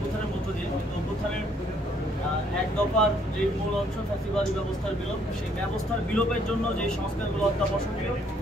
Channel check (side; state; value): both; normal; correlation 0.66